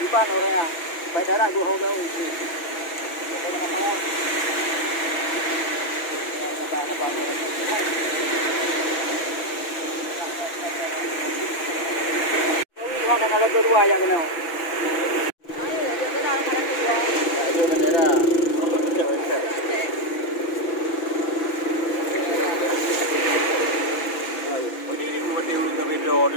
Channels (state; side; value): late; right; 6.0 ms